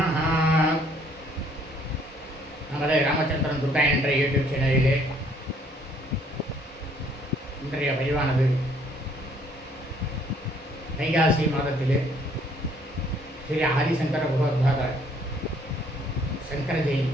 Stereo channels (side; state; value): both; normal; correlation 0.63